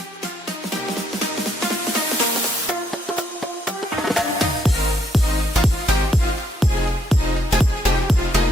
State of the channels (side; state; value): both; normal; correlation 0.73